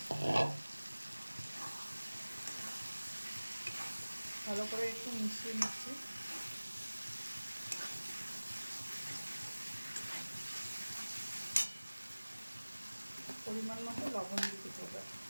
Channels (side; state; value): both; inverted; correlation -1.00